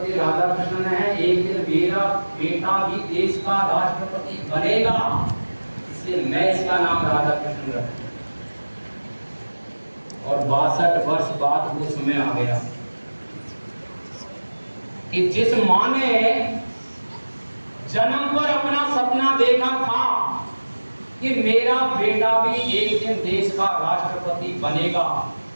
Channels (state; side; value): inverted; both; correlation -1.00